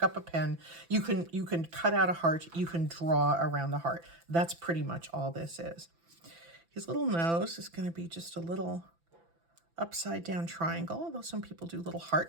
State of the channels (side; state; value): left; late; 5.9 ms